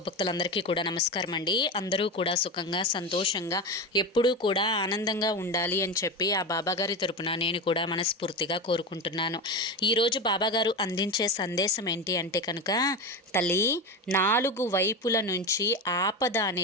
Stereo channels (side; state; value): both; normal; correlation 0.20